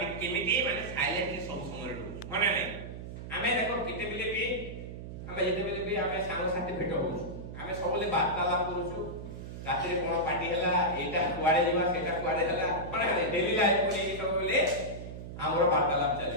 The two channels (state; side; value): noise; right; hum, 10 dB below the sound